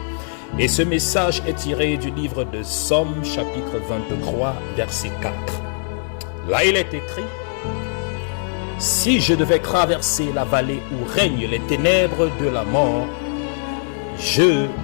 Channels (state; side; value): silent; right; 65 dB below the other